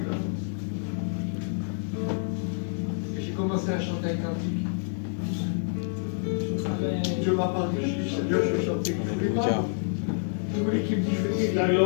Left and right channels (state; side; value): silent; right; 60 dB below the other